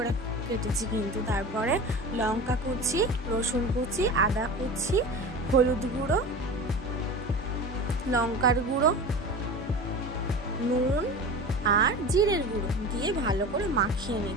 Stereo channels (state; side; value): normal; both; correlation 0.32